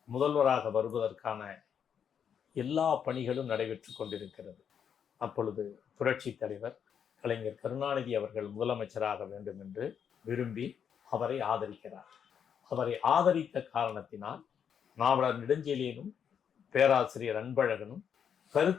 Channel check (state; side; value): quieter; right; 7.9 dB